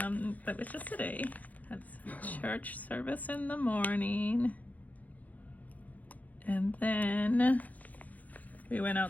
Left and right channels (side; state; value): right; late; 0.078 ms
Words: it's just today. That's church service in the morning. And then we went